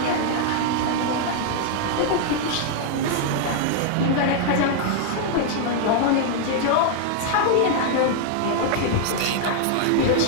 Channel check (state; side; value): different; both; correlation 0.00